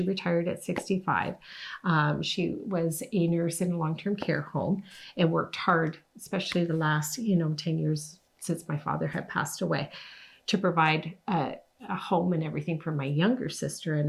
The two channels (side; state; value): both; identical; correlation 1.00